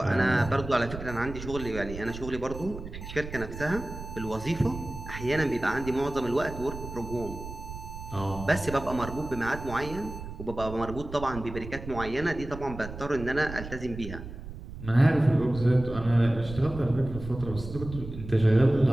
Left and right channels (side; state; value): right; noise; rumble, 11 dB below the sound